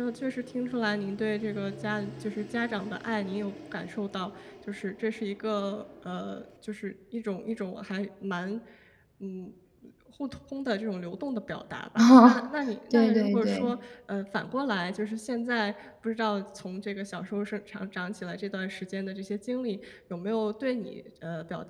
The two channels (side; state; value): both; identical; correlation 1.00